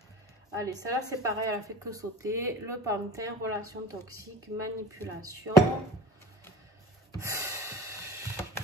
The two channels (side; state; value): both; normal; correlation 0.38